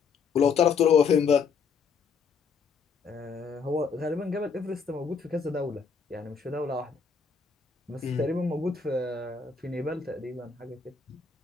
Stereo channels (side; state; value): right; quieter; 5.7 dB